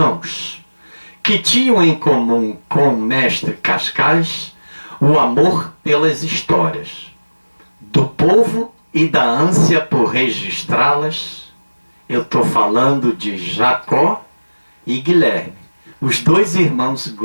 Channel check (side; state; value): both; inverted; correlation -1.00